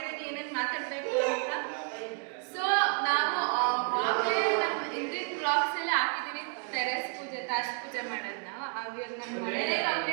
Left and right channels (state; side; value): quieter; left; 39.5 dB